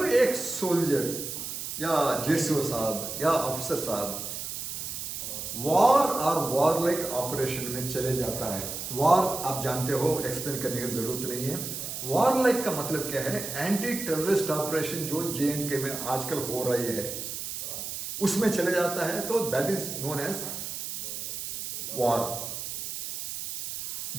एक सोल्जर या जेसीओ साहब या अफसर साहब वॉर और वॉर लाइक ऑपरेशन में चले जाता है। वॉर आप जानते हो, एक्सप्लेन करने की जरूरत नहीं है। वॉर लाइक का मतलब क्या है? एंटी टेररिस्ट ऑपरेशन जो JNK में आजकल हो रही है उसमें चले जाता है, तो that is known as war.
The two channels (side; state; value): right; noise; hiss, 6 dB below the sound